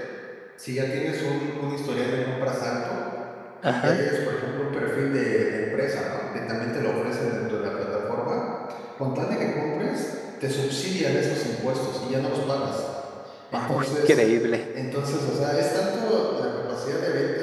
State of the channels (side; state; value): both; identical; correlation 1.00